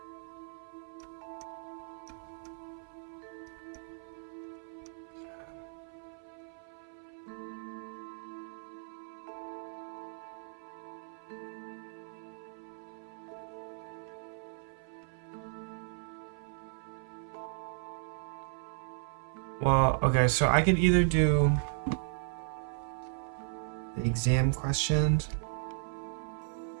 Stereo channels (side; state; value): left; silent; 54 dB below the other